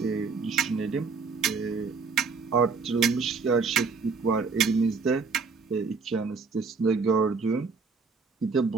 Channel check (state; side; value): quieter; left; 4.8 dB